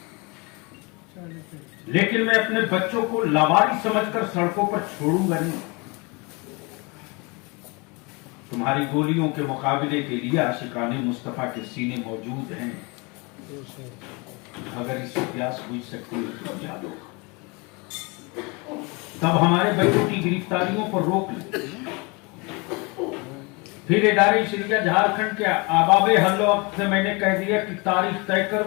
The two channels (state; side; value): quieter; right; 28.5 dB